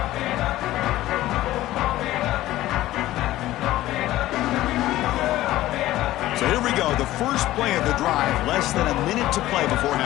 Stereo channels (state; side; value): quieter; right; 15.5 dB